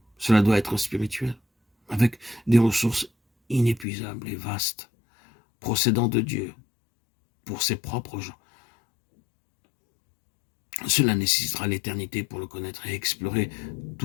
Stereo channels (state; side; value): drops out; right; at 3.9 s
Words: Cela doit être spirituel, avec des ressources inépuisables et vastes, procédant de Dieu pour ses propres gens. Cela nécessitera l'éternité pour le connaître et explorer